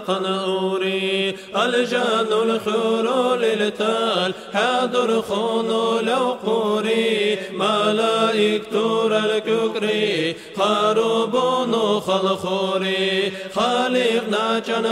أوري الجان الخرول التال حاضر خونو لو قوري ملائكة الككري خربون خلخوري خالقنا جن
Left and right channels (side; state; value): both; identical; correlation 1.00